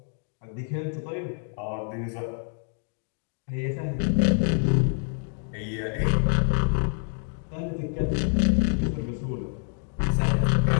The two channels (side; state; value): right; silent; 60 dB below the other